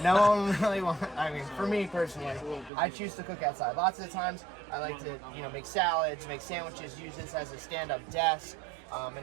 No one really wants, I mean, for me personally, I choose to cook outside. Lots of the times I like to, make salads, make sandwiches, use this as a stand-up desk. And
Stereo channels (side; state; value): left; drops out; at 2.7 s